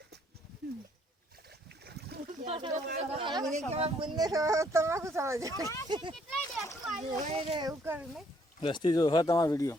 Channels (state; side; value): normal; both; correlation 0.66